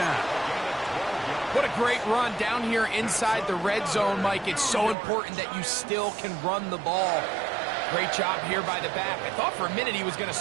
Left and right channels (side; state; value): left; drops out; at 5.0 s